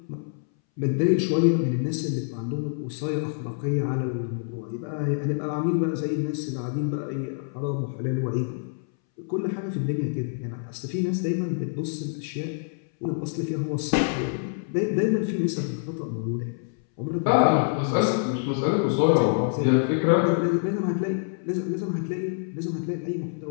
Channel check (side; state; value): right; silent; 61 dB below the other